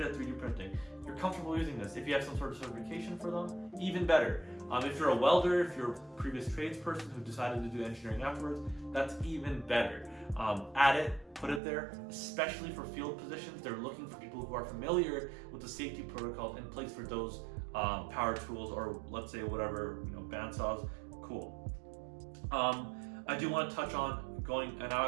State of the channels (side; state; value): left; drops out; at 11.6 s